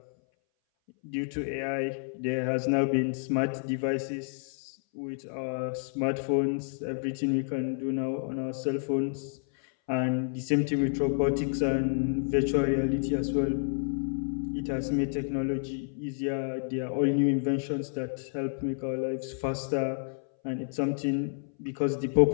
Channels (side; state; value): right; silent; 58 dB below the other